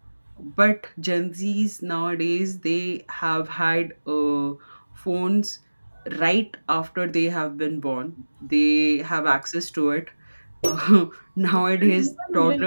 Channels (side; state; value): both; inverted; correlation -1.00